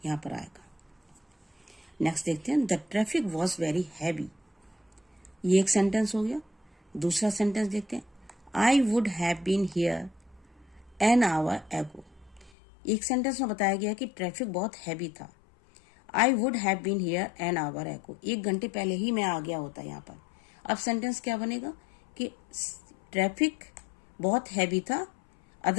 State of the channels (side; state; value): right; drops out; at 12.5 s